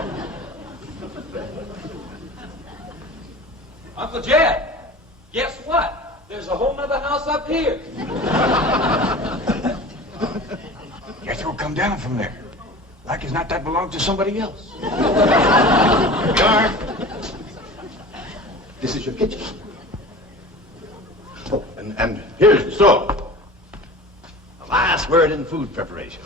Uncle Jed, guess what? There's a whole nother house up here. Jethro, come down from there. Like as not that belongs to somebody else. This is your kitchen. Oh, and here's the stove. The last word in food preparation.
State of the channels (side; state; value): both; normal; correlation 0.37